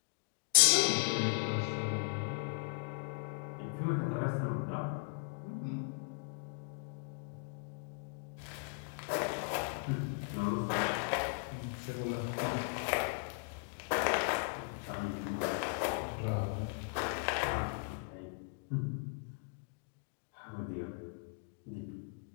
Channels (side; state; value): right; quieter; 34.1 dB